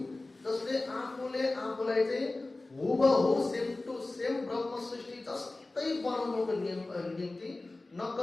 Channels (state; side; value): quieter; right; 3.1 dB